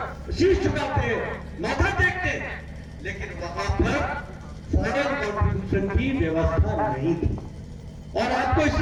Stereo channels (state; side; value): identical; both; correlation 1.00